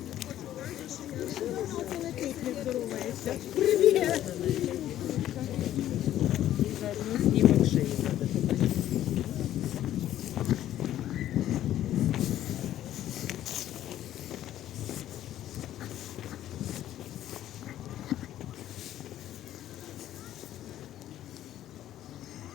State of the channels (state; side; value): quieter; right; 12.5 dB